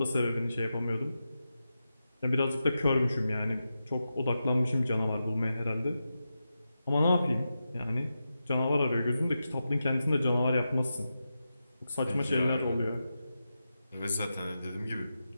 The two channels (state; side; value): inverted; both; correlation -0.90